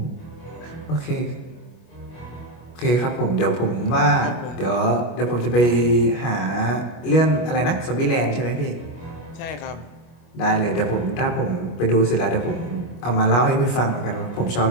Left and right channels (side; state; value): right; late; 25 ms